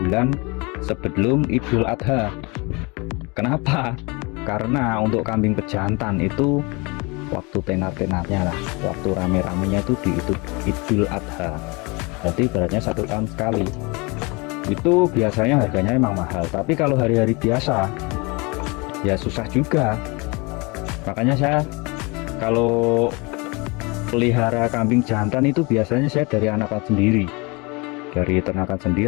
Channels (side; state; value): right; quieter; 27.7 dB